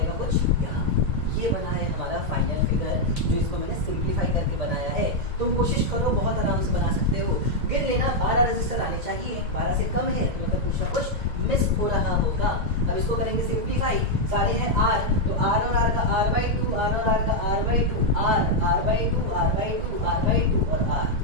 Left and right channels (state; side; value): late; left; 1.8 ms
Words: कुछ यहाँ। ये बना है हमारा फाइनल फिगर, जो इसको मैंने सिंप्लीफाई करके बनाया है। तुम कोशिश करो, बहुत आराम से बना सकते हो। गिन लेना 12 रजिस्टर आने चाहिए, 12 से कम है तो मतलब कुछ ना कुछ मिस हो रहा होगा। अब इसको करेंगे सिंप्लीफाई, सारे हैं R, तो R और R का R/2, R और R का R/2, R/2, R/2, R/2 और R।